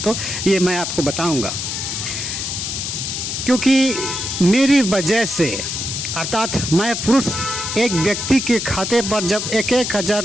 ये मैं आपको बताऊँगा। क्योंकि मेरी वजह से, अर्थात मैं पुरुष, एक व्यक्ति के खाते पर जब 1,000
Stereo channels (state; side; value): noise; left; hiss, 4 dB below the sound